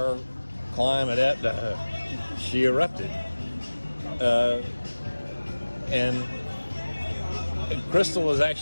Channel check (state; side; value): inverted; both; correlation -1.00